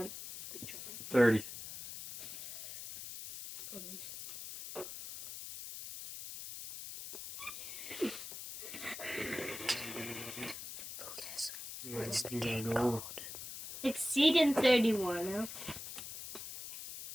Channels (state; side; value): noise; left; hiss, 9 dB below the sound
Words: big trouble. 30. What's the You gotta game go called? over. Exceeding 31.